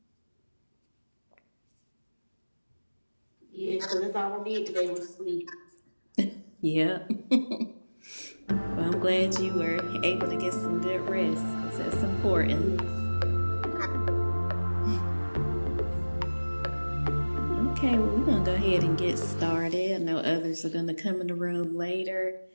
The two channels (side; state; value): both; inverted; correlation -1.00